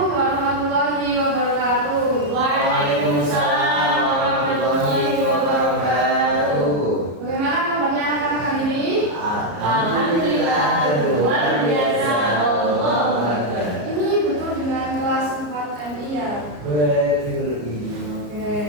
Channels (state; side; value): late; left; 33 ms